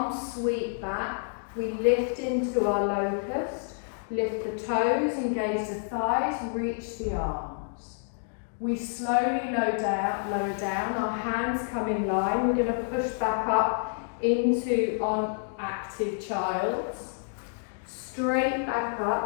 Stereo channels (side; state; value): right; silent; digital silence